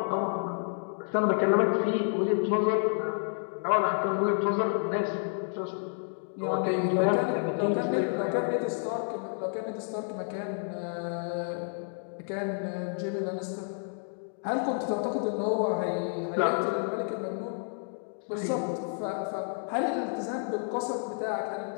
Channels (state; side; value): silent; right; 58 dB below the other